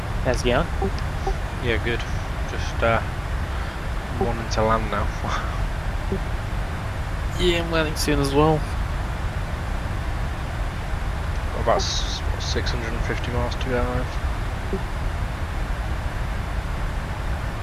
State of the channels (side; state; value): both; identical; correlation 1.00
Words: How's it going? Yeah, good. Just wanting to land now. Yeah, I'm landing soon as well. About 650 miles to go.